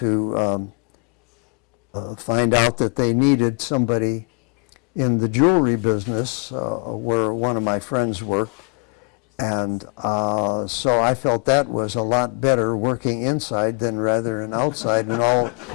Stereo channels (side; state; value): right; quieter; 38.2 dB